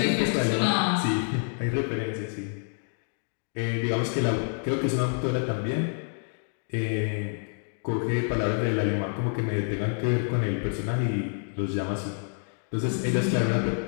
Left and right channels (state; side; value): silent; right; 56 dB below the other